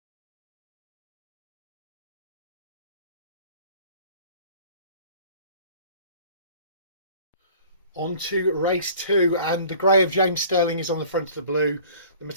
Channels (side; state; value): both; inverted; correlation -0.49